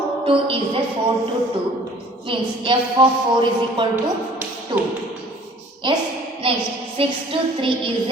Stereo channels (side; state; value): both; normal; correlation 0.52